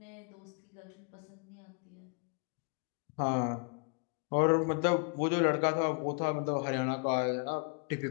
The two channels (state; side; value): quieter; right; 35.5 dB